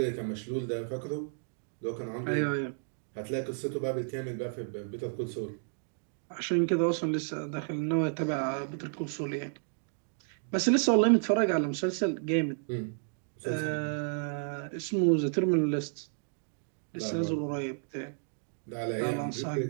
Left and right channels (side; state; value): left; silent; digital silence